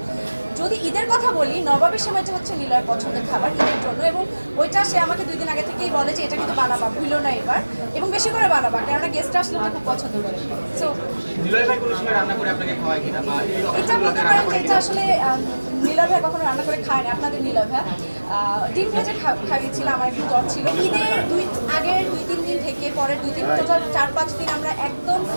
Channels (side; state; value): both; inverted; correlation -1.00